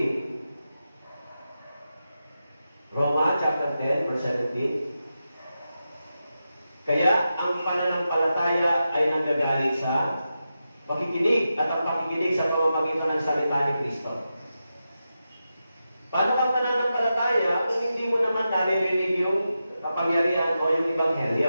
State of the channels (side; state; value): both; inverted; correlation -0.90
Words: Roma, chapter 10, verse 17. Kaya, ang pananampalataya ay nanggagaling sa pakikinig at ang pakikinig sa pamamagitan ng salita ni Kristo. Paano ka pananampalataya kung hindi mo naman naririnig yung kapangyarihan o yung